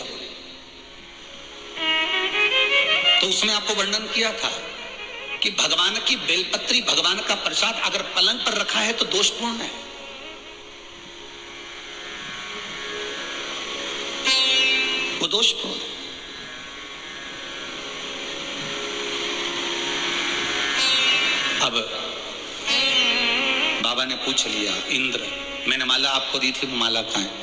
हो रही। तो उसमें आपको वर्णन किया था कि भगवान की बेलपत्री, भगवान का प्रसाद अगर पलंग पर रखा है तो दोषपूर्ण है। वो दोषपूर्ण है। अब बाबा ने पूछ लिया, इंद्र मैंने माला आपको दी थी, वो माला कहाँ है?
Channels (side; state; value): both; identical; correlation 1.00